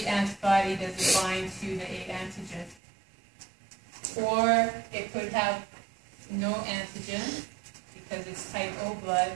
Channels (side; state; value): left; drops out; at 2.8 s